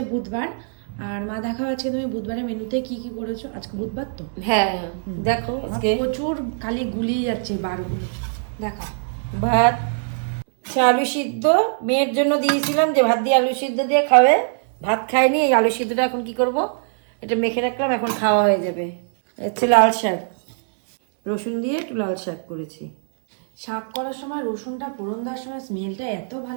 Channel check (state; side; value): silent; left; 64 dB below the other